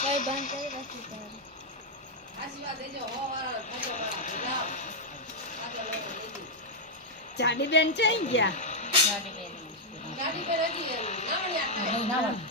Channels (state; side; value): normal; both; correlation -0.01